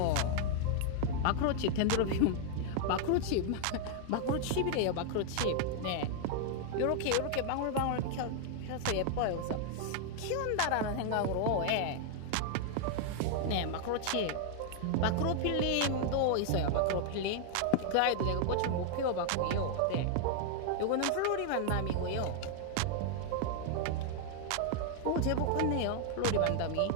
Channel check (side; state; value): both; different; correlation 0.00